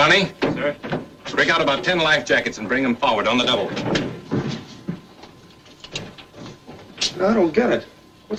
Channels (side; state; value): both; identical; correlation 1.00